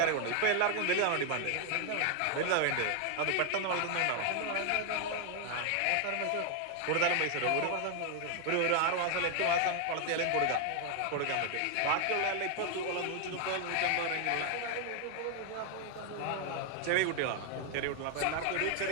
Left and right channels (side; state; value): both; different; correlation 0.00